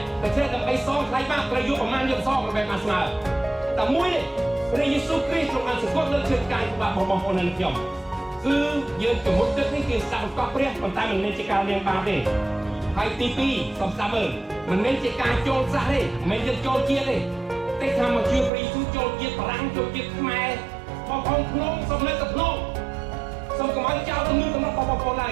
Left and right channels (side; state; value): left; drops out; at 18.5 s